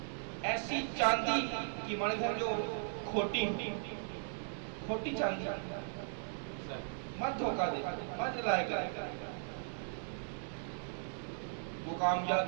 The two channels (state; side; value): silent; left; digital silence